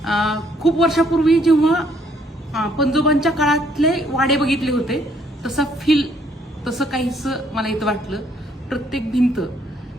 खूप वर्षापूर्वी जेव्हा पंजोबांच्या काळातले वाडे बघितले होते तसा फील तसं काहीच मला इथं वाटलं। प्रत्येक भिंत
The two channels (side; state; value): both; normal; correlation 0.67